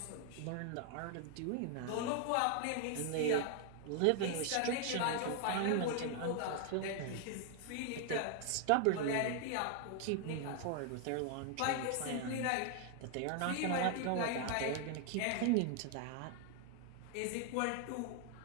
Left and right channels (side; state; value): both; different; correlation 0.00